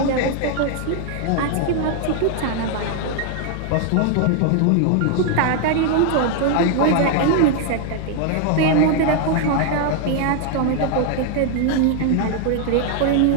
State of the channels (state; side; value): different; both; correlation 0.00